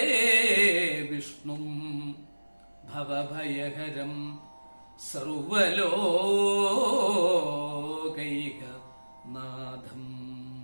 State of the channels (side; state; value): both; inverted; correlation -1.00